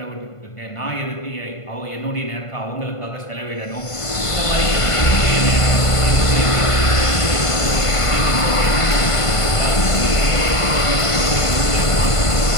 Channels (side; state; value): right; late; 1.5 ms